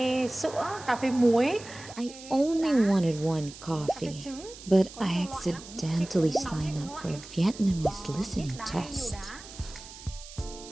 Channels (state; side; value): noise; right; hiss, 16 dB below the sound